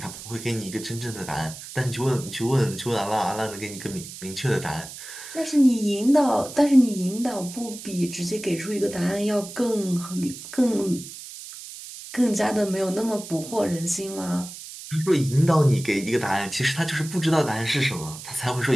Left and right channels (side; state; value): right; noise; hiss, 13 dB below the sound